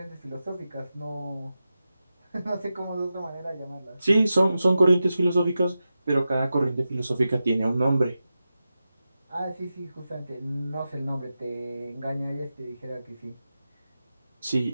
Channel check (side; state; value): both; inverted; correlation -0.92